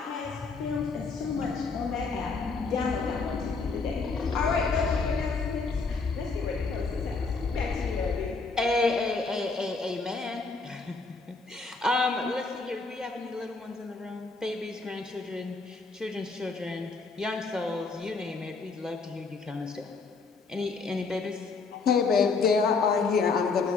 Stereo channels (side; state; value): right; quieter; 4.3 dB